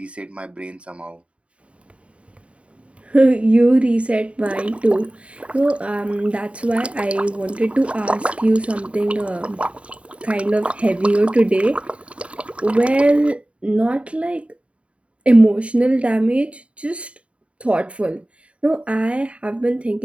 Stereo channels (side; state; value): left; late; 0.062 ms